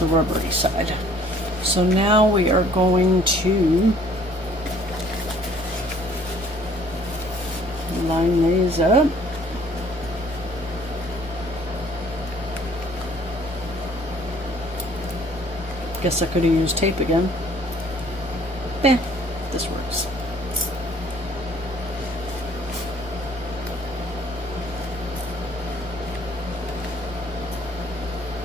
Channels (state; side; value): normal; both; correlation 0.58